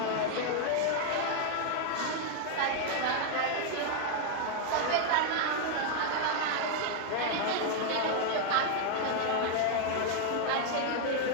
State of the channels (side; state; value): both; different; correlation 0.00